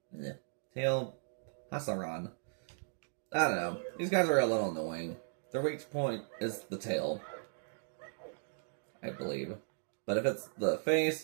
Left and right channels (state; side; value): silent; left; digital silence